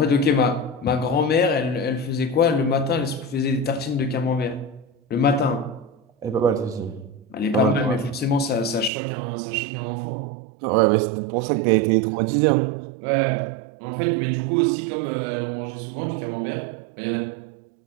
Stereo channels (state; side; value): drops out; left; at 8.9 s